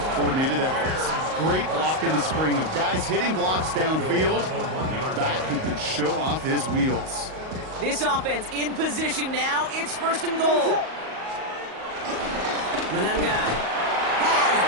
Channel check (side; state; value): left; late; 38 ms